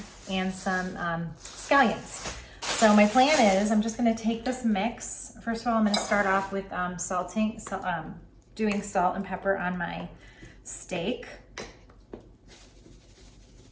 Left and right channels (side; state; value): both; identical; correlation 1.00